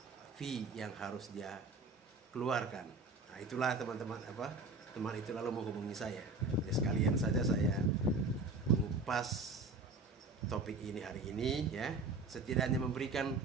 fee yang harus dia keluarkan. Nah, itulah teman-teman teman itu lalu menghubungi saya. Jadi sekalian saja saya mengupas topik ini hari ini ya, setidaknya memberikan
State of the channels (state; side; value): quieter; left; 3.5 dB